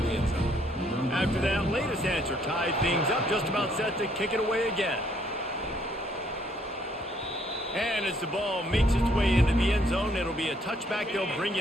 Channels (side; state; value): both; normal; correlation 0.67